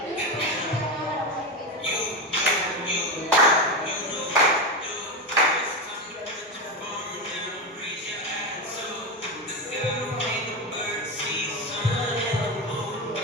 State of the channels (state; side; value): normal; both; correlation 0.15